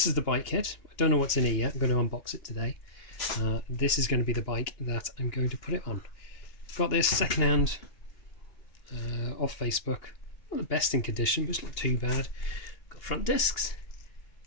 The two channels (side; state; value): right; late; 2.8 ms